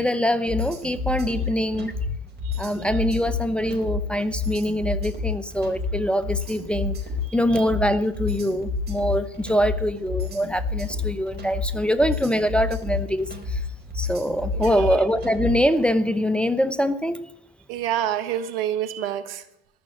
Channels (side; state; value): both; normal; correlation 0.71